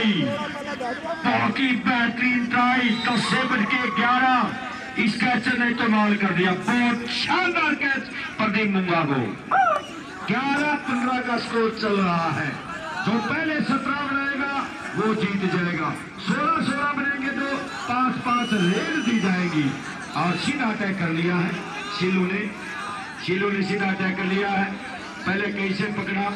बहुत ही बेहतरीन ट्राई, 10 से बढ़ के 11 इस कैचर ने कमाल कर दिया। बहुत शानदार कैच प्रदीप मुंगा को। 11-15 का स्कोर चल रहा है। जो पहले 17 बनाएगा वो जीत जाएगा, 16-16 बनेंगे तो 5-5 रेल दी जाएगी। और सीधा अटैक कर लिया है सिल्लू ने सीधा अटैक कर लिया है। पहले कैसे पकड़ा,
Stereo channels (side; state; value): both; identical; correlation 1.00